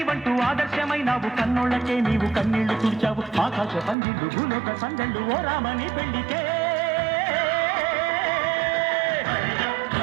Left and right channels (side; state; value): left; drops out; at 4.0 s